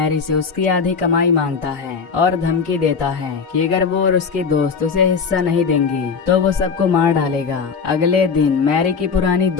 से उसकी आधी कमाई मांगता है और धमकी देता है कि अगर वो और उसके दोस्त उसे हिस्सा नहीं देंगे तो वो सबको मार डालेगा। अगले दिन मैरी की पुरानी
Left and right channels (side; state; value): right; quieter; 5.6 dB